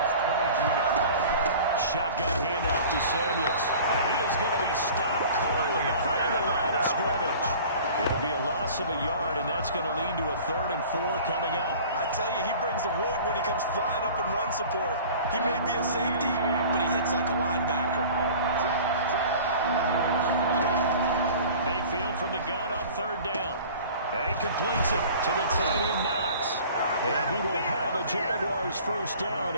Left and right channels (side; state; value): both; inverted; correlation -0.44